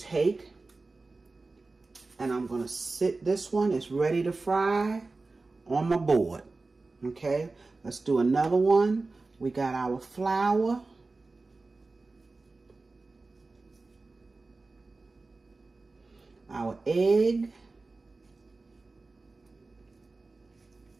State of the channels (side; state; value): left; quieter; 3.6 dB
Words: and I'm going to sit this one. It's ready to fry on my board. Okay, let's do another one. We got our flour. Our egg.